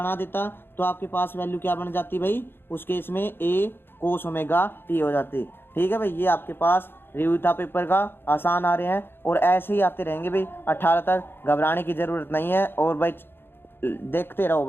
देता तो आपके पास वैल्यू क्या बन जाती भाई, उस केस में ए कोस ओमेगा टी हो जाती। ठीक है भाई। ये आपके पास रिव्यू था पेपर का, आसान आ रहे हैं और ऐसे ही आते रहेंगे भाई 18 तक, घबराने की ज़रूरत नहीं है। और भाई देखते रहो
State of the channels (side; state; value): right; late; 0.10 ms